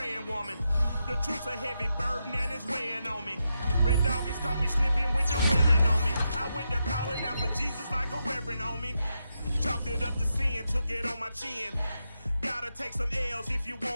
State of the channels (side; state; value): both; inverted; correlation -0.85